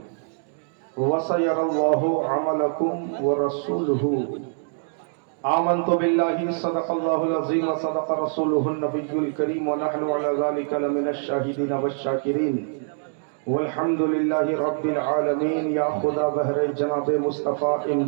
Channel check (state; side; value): silent; left; digital silence